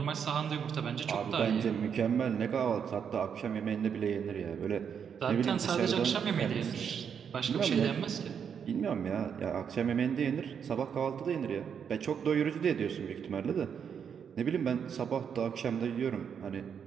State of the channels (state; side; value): quieter; left; 7.4 dB